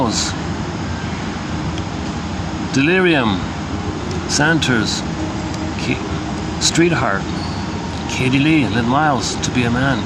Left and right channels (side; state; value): both; identical; correlation 1.00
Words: Delirium, Santers, Streetheart, Katie Lee, Lynn Miles, To Be a Man,